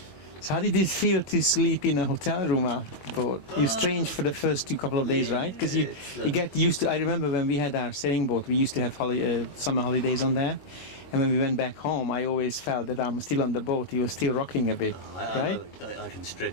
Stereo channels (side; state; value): right; late; 22 ms